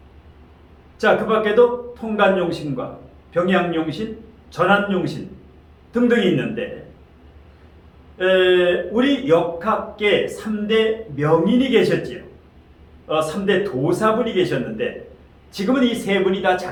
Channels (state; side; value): identical; both; correlation 1.00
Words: 자, 그 밖에도 통간용신과 병양용신, 전환용신 등등이 있는데 우리 역학계 3대 명인이 계셨지요. 3대 도사분이 계셨는데 지금은 이 세 분이 다